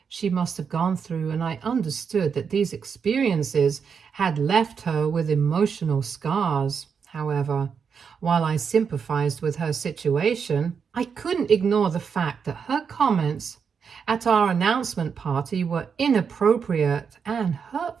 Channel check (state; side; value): quieter; left; 6.4 dB